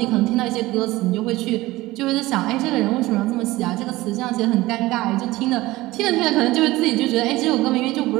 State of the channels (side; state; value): left; quieter; 18.7 dB